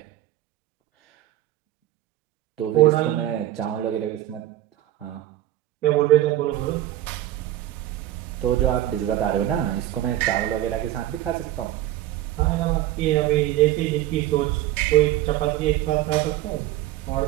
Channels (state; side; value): quieter; left; 14.1 dB